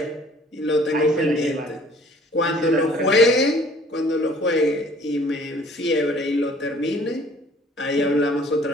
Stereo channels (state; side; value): normal; both; correlation 0.55